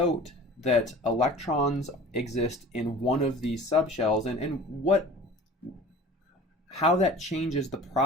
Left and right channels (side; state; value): both; normal; correlation 0.42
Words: that electrons exist in one of these subshells and how that changes the